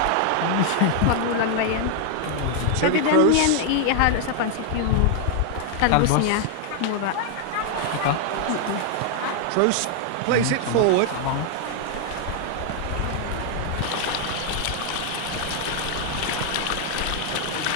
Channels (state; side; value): different; both; correlation 0.00